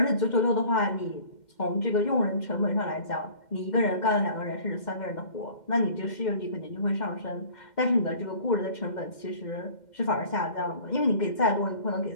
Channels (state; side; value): late; right; 2.1 ms